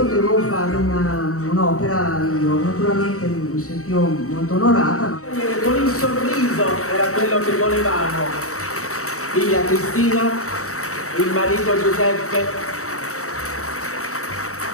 fare un'opera io. Naturalmente mi sentivo molto onorata. Con il sorriso era quello che volevamo. Figlia Cristina, il marito Giuseppe,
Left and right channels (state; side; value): late; right; 0.64 ms